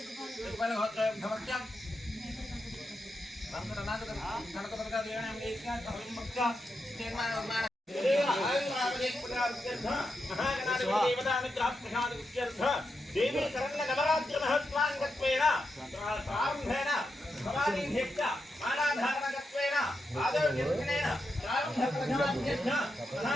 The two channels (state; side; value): normal; both; correlation 0.86